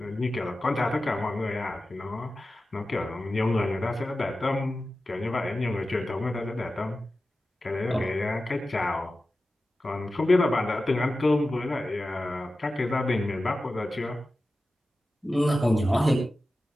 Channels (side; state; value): both; normal; correlation 0.94